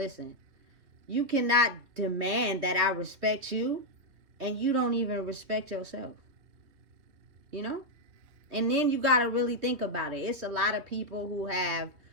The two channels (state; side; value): late; left; 3.2 ms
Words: you cannot demand that I respect you and you don't even respect yourself. You know? And then you got to really think about it. It's a lot of people who have